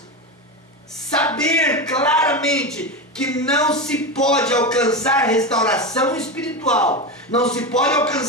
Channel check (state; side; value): normal; both; correlation 0.18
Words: saber claramente que não se pode alcançar restauração espiritual, não se pode